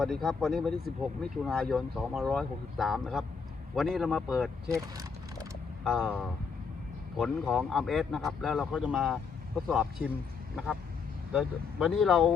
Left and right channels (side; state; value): right; quieter; 5.5 dB